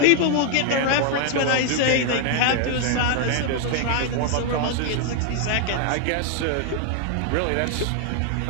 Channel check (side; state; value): both; different; correlation 0.00